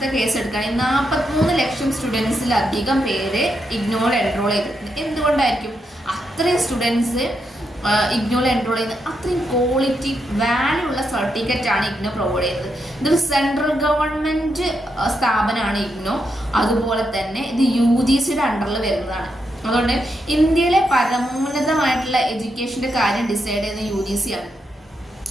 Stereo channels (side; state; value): both; normal; correlation 0.82